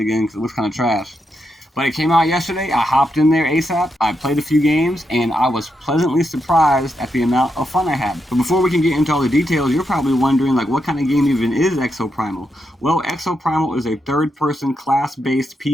again because it looks kind of trash. But it came out yesterday. I hopped in there ASAP. I played a few games, and I was pleasantly surprised at the amount of fun I had. But before we can get into all the details, you're probably wondering, like, what kind of game even is ExoPrimal? Well, ExoPrimal is a third-person, class-based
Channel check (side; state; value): both; normal; correlation 0.83